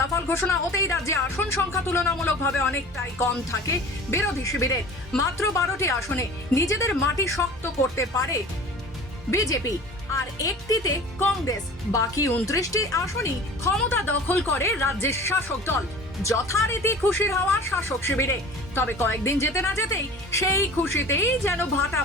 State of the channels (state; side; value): normal; both; correlation 0.40